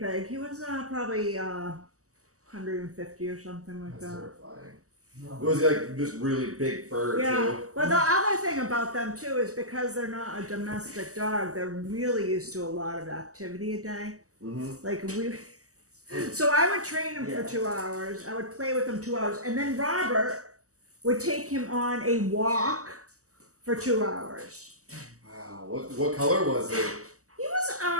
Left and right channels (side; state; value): left; late; 0.66 ms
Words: He was probably 150 or something like That's that. terrifying. It was like this really big fur Yeah. too. But the other thing about them too is because they're not a domestic dog, they're really used to a lot of activity a day. Mm-hmm. Like we. So I would train him Yeah. for 2 hours. I would play with him 2 hours, and then Robert would take him on a walk for 2 hours. Wow. What color was it?